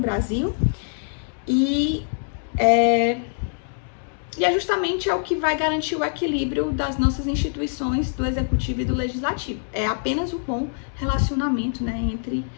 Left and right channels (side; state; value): right; silent; 63 dB below the other